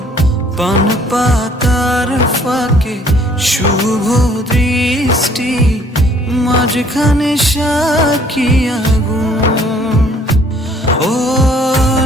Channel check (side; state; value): both; normal; correlation 0.59